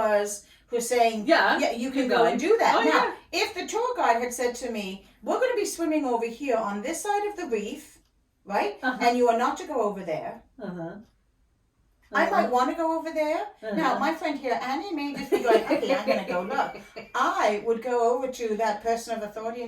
saying, yeah, you can go and do that. Now, if the tour guide had said to me, we're going to be swimming over here on this side of the reef, right? And you are not to go over there. I might want to go over there. Now, my friend here, Annie, may just be going, okay, I'm going to go look. I would go over to that person of authority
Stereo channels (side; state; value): both; identical; correlation 1.00